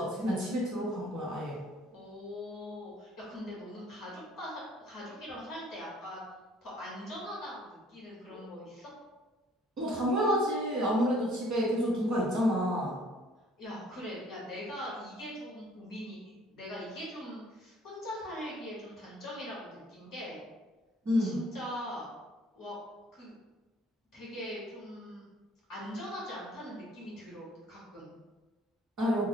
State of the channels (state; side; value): normal; both; correlation 0.57